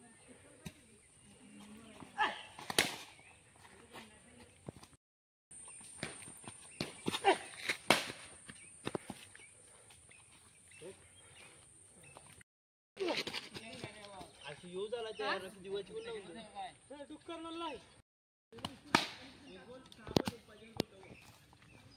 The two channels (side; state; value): both; identical; correlation 1.00